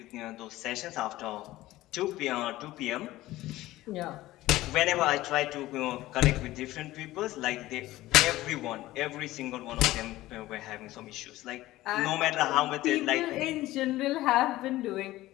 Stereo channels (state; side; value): quieter; right; 16.7 dB